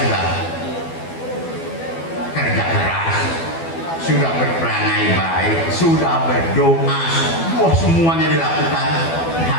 sudah kerja keras, sudah berperangai baik, sudah berdoa, semuanya dilakukan,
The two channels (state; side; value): late; right; 12 ms